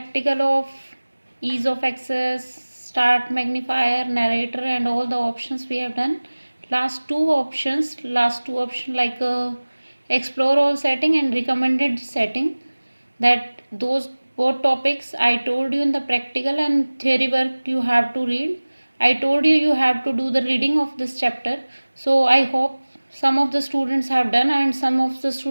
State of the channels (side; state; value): both; inverted; correlation -1.00